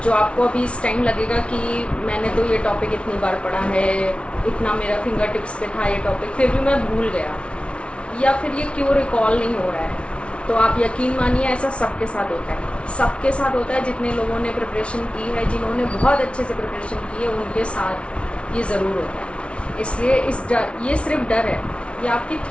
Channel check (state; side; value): late; right; 0.060 ms